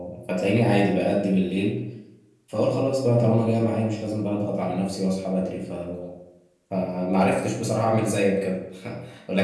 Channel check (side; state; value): both; identical; correlation 1.00